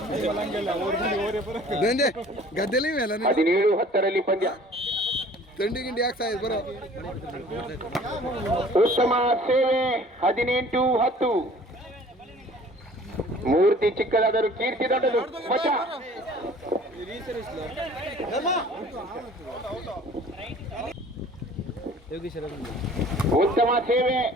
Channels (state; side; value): normal; both; correlation 0.50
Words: ಗದ್ದೆಲಿ 17-10 ಪಂದ್ಯ. ತಿಂಡಿ ಗಿಂಡಿ ಯಾಕೆ ಬರೋ ಉತ್ತಮ ಸೇವೆ. 18-10. ಮೂರ್ತಿ ಚಿಕ್ಕದಾದರೂ ಕೀರ್ತಿ ದೊಡ್ಡದು. ಮಚ್ಚ ಉತ್ತಮ ಸೇವೆ,